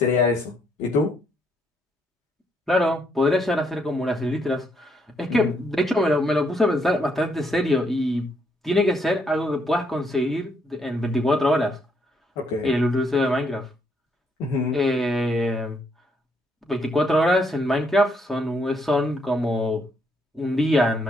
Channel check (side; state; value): both; normal; correlation 0.73